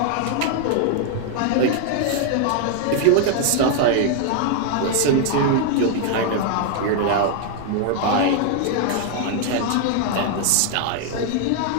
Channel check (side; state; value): both; different; correlation 0.00